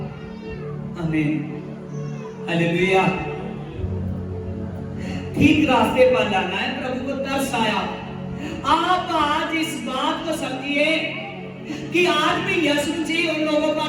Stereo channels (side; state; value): both; identical; correlation 1.00